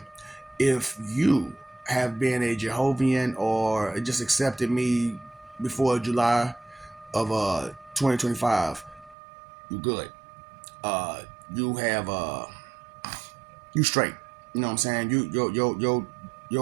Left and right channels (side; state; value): left; drops out; at 9.2 s